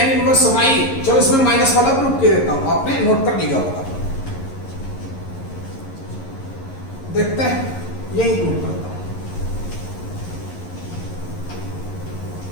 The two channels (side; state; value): right; late; 11 ms